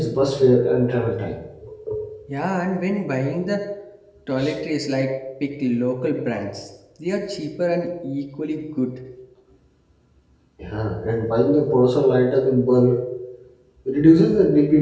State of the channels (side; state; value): both; identical; correlation 1.00